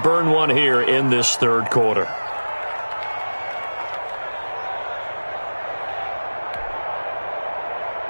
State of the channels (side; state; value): both; inverted; correlation -1.00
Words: one here in this 3rd quarter.